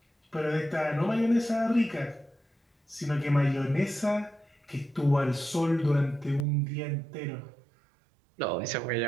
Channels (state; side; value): drops out; left; at 6.5 s